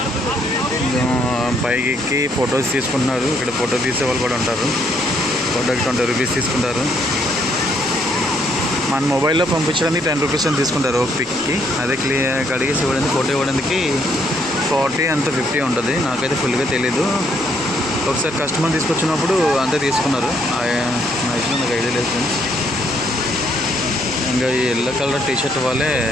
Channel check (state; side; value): noise; left; rumble, 24 dB below the sound